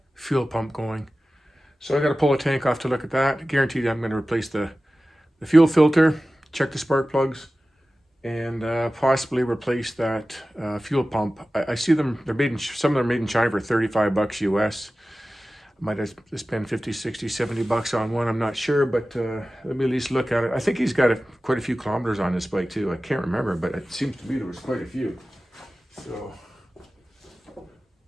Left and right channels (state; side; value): normal; both; correlation 0.96